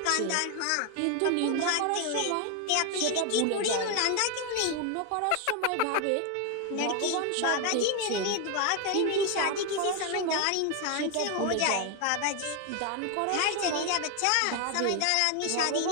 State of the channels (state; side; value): different; both; correlation 0.01